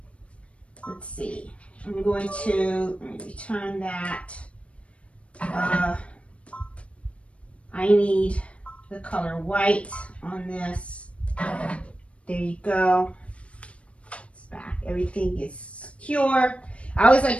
let's see. I'm going to return that. I need the color white on this. There you go. It's back. Everything is secure. I always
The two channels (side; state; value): right; late; 0.062 ms